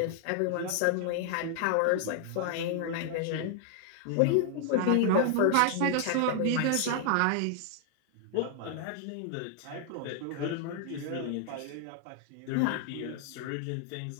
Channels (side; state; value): both; different; correlation 0.00